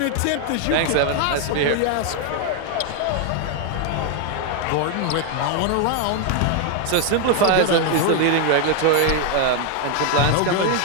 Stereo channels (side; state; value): both; different; correlation 0.00